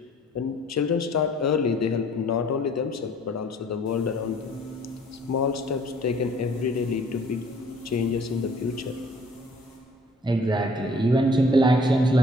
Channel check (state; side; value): normal; both; correlation 0.55